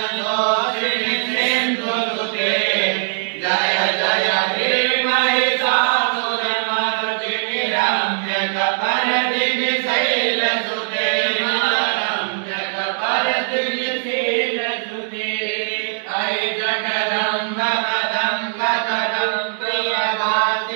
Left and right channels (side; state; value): left; silent; digital silence